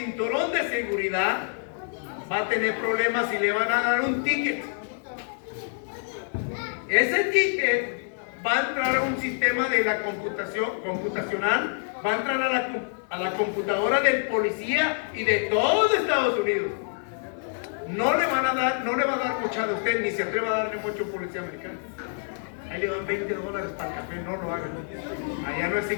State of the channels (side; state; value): right; silent; 60 dB below the other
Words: de seguridad, va a tener problemas y le van a dar un ticket. Ese ticket va a entrar a un sistema de la computacional, va a entrar a la computadora del policía y de todos Estados Unidos. No le va a dar mucha de usted, ni se atreva a darle mucho a un policía americano. Ahí le dan $20 para el café, no lo hagan. Allá no